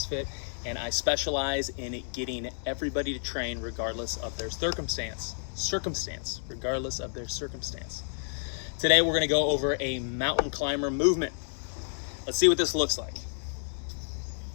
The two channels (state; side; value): silent; right; 58 dB below the other